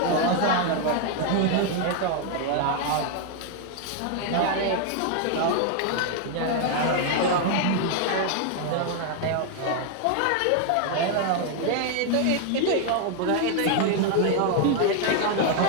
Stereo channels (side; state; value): both; different; correlation 0.00